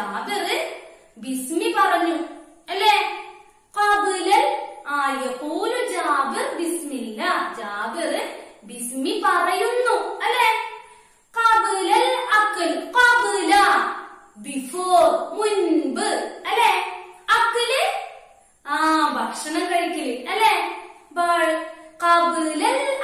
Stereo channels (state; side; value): identical; both; correlation 1.00